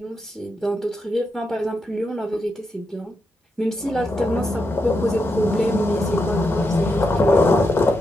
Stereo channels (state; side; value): normal; both; correlation 0.84